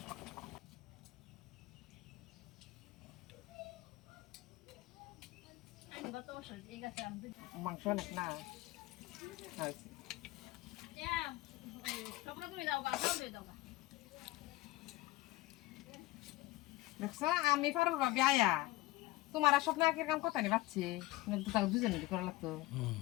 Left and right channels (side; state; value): right; quieter; 18.9 dB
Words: মাংস অনেক না হয়েছে। দেখছো আমি পারবো ভাবি আয়া তোমার আর স্বপ্ন একের কাম কথা নেই পাচ্ছি তাকে দুজনে করা লাগতো।